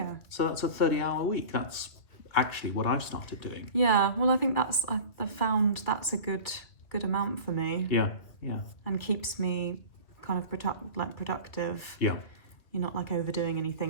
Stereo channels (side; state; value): right; late; 2.2 ms